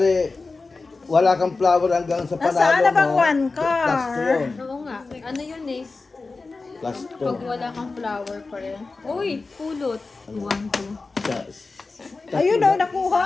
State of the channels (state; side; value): quieter; right; 3.9 dB